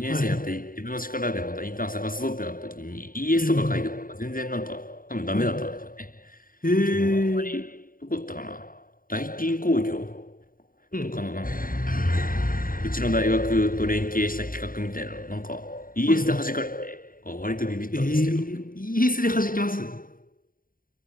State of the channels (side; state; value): right; late; 0.41 ms